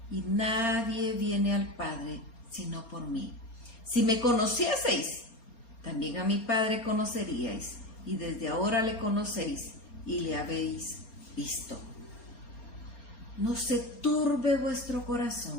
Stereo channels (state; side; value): late; right; 4.3 ms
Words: y nadie viene al Padre sino por mí. Si me conocieseis, también a mi Padre conoceríais, y desde ahora le conocéis y le habéis visto. No se turbe vuestro